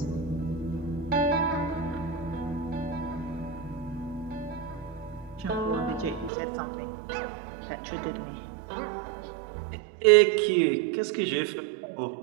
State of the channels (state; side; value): drops out; left; at 6.3 s